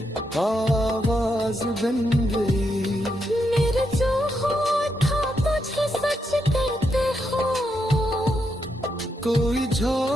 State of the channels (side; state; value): both; normal; correlation 0.81